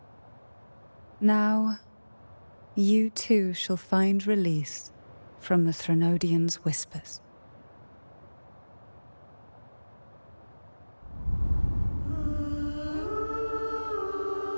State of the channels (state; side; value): inverted; both; correlation -1.00